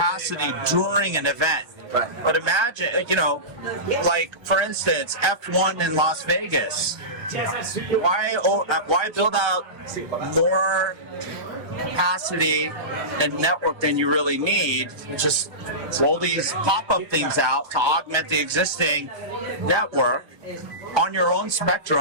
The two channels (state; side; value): late; left; 1.2 ms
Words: during an event. Right. But imagine, like for instance, F1 in Las Vegas. Why build out more capacity and network than you really need? Just roll these pop-up things out to augment the existing network on your own